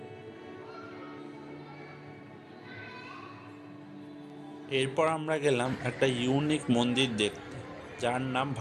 এরপর আমরা গেলাম একটা ইউনিক মন্দির দেখতে, যার নাম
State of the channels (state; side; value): identical; both; correlation 1.00